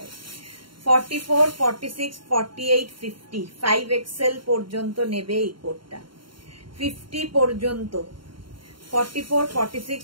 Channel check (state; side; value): late; left; 0.73 ms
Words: 44, 46, 48, 50, 5XL পর্যন্ত নেবে এই কোটটা, 50 পর্যন্ত। 44, 46,